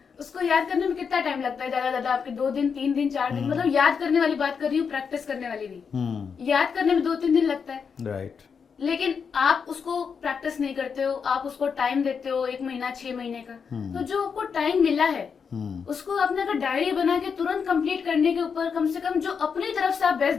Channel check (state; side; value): quieter; right; 6.2 dB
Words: उसको याद करने में कितना टाइम लगता है? ज्यादा आपके 2 दिन 3 दिन 4 दिन, मतलब याद करने वाली बात कर रही हूँ, प्रैक्टिस करने वाली नहीं। याद करने में 2-3 दिन लगता है। राइट। लेकिन आप उसको प्रैक्टिस नहीं करते हो, आप उसको टाइम देते हो 1 महीना 6 महीने का। तो जो आपको टाइम मिला है उसको आपने अगर डायरी बना के तुरंत कंप्लीट करने के ऊपर कम से कम जो अपनी तरफ से आप बेस्ट